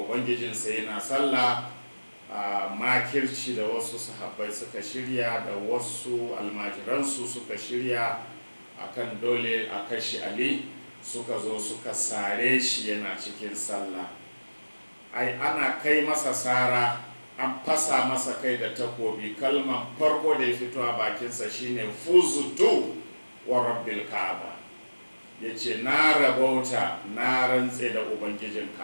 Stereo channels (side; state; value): both; inverted; correlation -1.00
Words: yana sallah. Makirci da wasu sahabbai suka shirya da wasu almajiransu suka shirya akan dole a kashe Ali, suka zo suka sare shi yana cikin sallah. Ana kai masa sara, an fasa masa kai da takobi, kalman farko da ya fito a bakinsa shine fuzutu wa rabbil ka'aba, yace na rabauta, na rantse da ubangijin